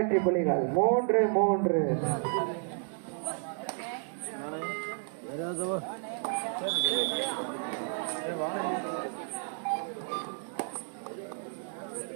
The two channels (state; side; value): silent; left; 57 dB below the other